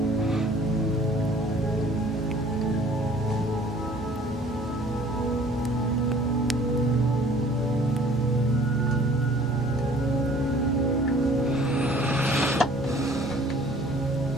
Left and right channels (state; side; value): normal; both; correlation 0.53